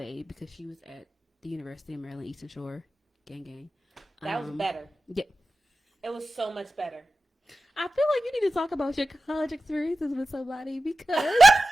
because she was at the University of Maryland, Eastern Shore. Gang. That was better. Yeah. It was so much better. I feel like you need to talk about your college experiences with somebody because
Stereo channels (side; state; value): both; normal; correlation 0.93